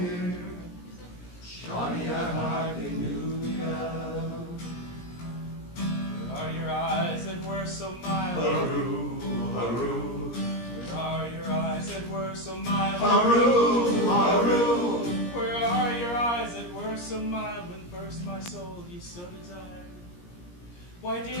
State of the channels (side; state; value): right; late; 17 ms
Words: Johnny, I hardly knew ya. where are your eyes that were so mild? Hurroo, hurroo. Where are your eyes that were so mild? Hurroo, hurroo. Where are your eyes that were so mild when first my soul you so desired? Why